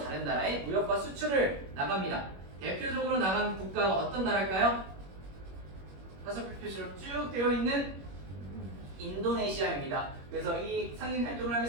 나라에 무역과 수출을 나갑니다. 대표적으로 나간 국가가 어떤 나라일까요? 다섯 표시로 쭉 되어 있는 인도네시아입니다. 그래서 이 상인 활동을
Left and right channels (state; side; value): late; left; 21 ms